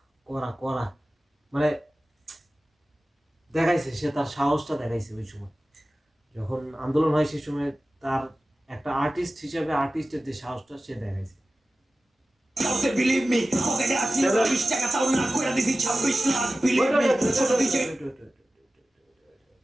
করা মানে দেখাইছে, সে তার সাহসটা দেখাইছে ওই সময় যখন আন্দোলন হয়, সেই সময় তার একটা আর্টিস্ট হিসেবে আর্টিস্টের যে সাহসটা সে দেখাইছে। তাওতে বিলিভ মি পকেটে আছে 20 টাকা তাও না কইরা দিছি 26 লাখ বিলিভ মি ছোট দিছে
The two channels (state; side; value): normal; both; correlation 0.96